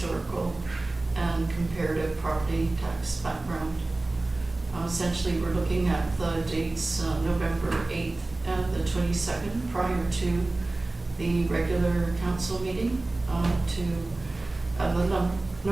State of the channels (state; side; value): quieter; left; 3.0 dB